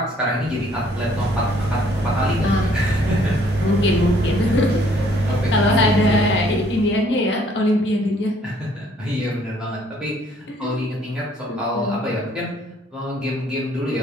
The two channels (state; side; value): normal; both; correlation 0.62